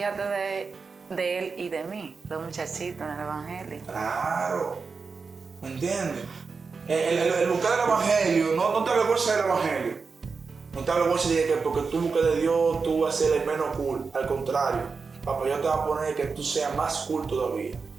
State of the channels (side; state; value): left; quieter; 4.9 dB